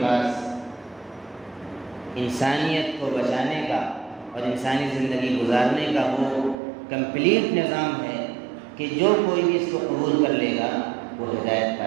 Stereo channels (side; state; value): left; drops out; at 6.6 s